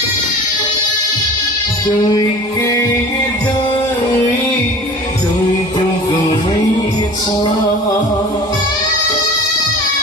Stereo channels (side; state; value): both; normal; correlation 0.41